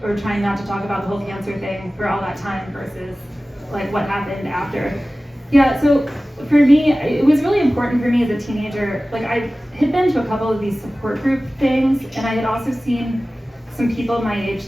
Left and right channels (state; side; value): normal; both; correlation 0.97